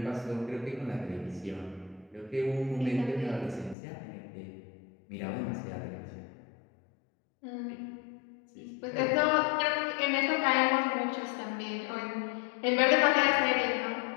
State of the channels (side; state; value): right; drops out; at 3.8 s